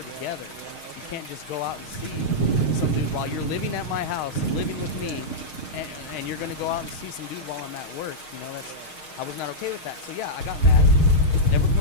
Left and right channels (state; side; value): late; right; 6.4 ms